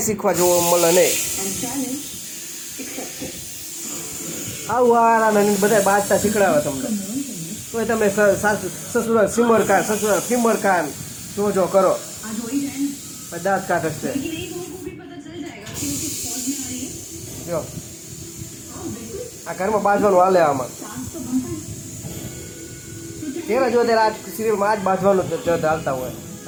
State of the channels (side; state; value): both; identical; correlation 1.00